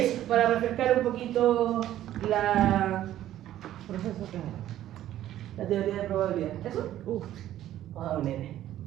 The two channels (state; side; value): quieter; left; 12.7 dB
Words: para refrescar un poquito la teoría de probabilidad. ¿Eso? Ah, un N.